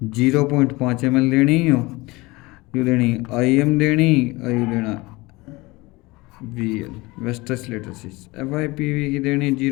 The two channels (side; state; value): right; quieter; 22.5 dB